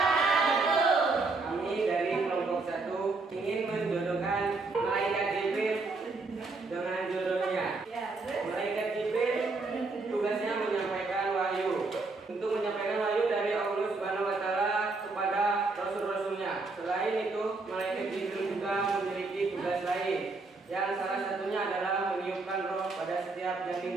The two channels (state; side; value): quieter; left; 3.7 dB